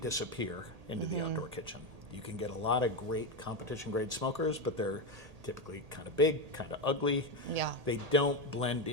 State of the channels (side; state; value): left; late; 1.8 ms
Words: disappear into the outdoor kitchen. You can get a lot of great competition grade smokers, but they're typically kind of big, kind of ugly. Yeah. They don't blend